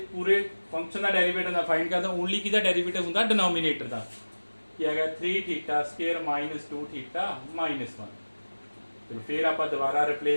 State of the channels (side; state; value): both; inverted; correlation -1.00